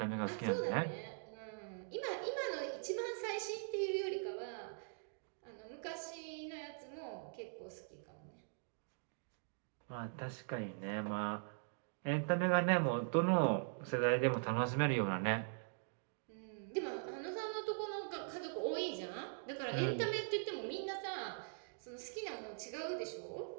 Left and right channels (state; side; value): silent; left; digital silence